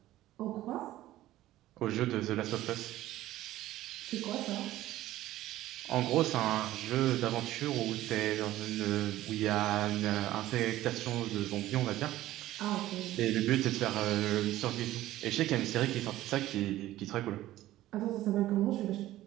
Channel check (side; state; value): left; quieter; 15.0 dB